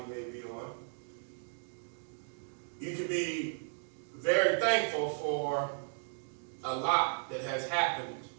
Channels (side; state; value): left; silent; digital silence